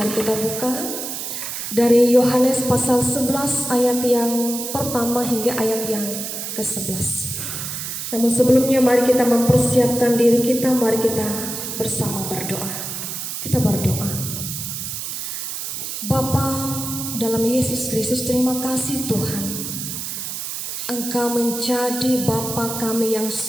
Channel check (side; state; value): right; noise; hiss, 5 dB below the sound